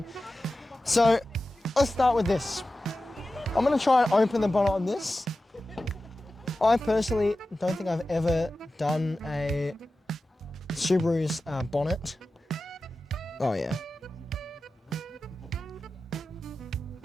So, let's start with this. I'm gonna try and open the bonnet on this. I personally don't think I've ever done a Subaru's bonnet. Oh yeah.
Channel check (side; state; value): both; normal; correlation 0.94